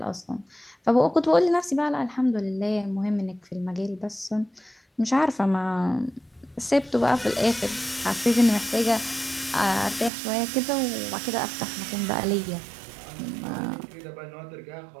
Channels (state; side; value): drops out; left; at 10.1 s